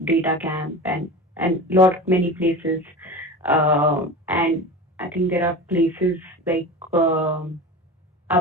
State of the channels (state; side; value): normal; both; correlation 0.31